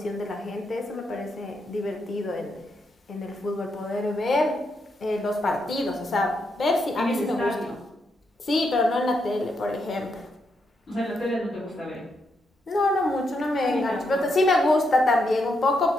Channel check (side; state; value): both; normal; correlation 0.80